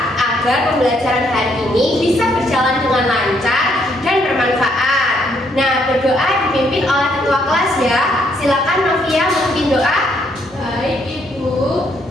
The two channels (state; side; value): normal; both; correlation 0.71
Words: agar pembelajaran hari ini bisa berjalan dengan lancar dan bermanfaat. Nah, berdoa dipimpin oleh ketua kelas ya. Silakan Novia memimpin doa. Baik Ibu,